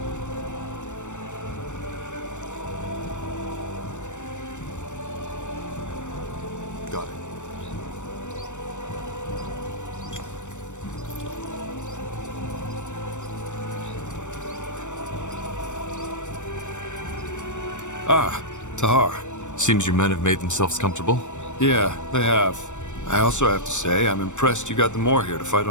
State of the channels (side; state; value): right; late; 0.84 ms